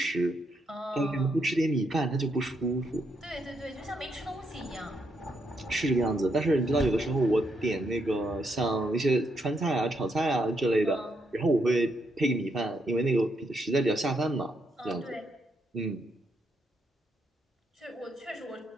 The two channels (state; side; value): normal; both; correlation 0.78